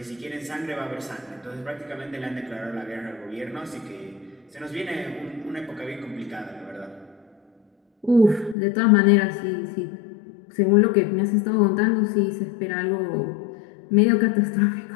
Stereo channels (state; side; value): drops out; right; at 8.6 s